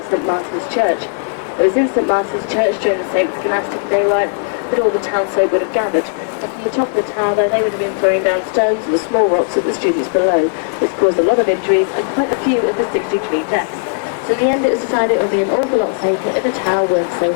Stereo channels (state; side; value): silent; right; digital silence